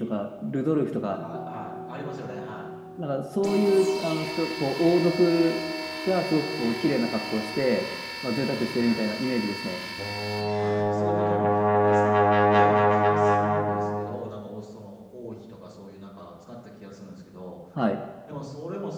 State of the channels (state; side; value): identical; both; correlation 1.00